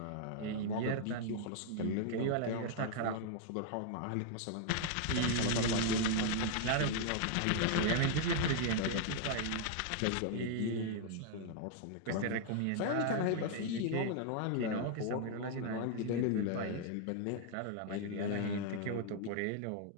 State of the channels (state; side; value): different; both; correlation -0.01